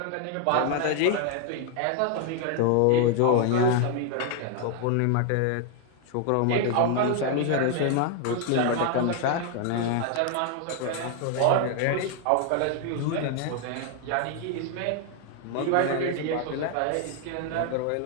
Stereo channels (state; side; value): different; both; correlation 0.00